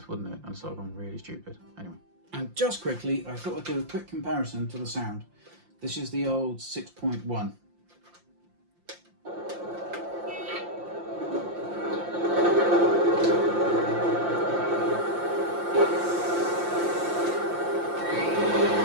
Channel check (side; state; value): left; late; 5.7 ms